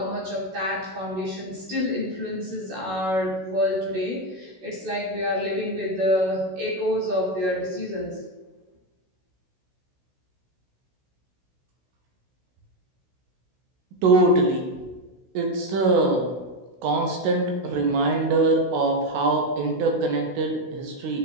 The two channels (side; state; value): left; late; 16 ms